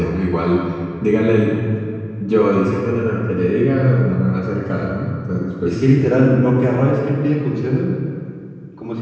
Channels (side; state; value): both; identical; correlation 1.00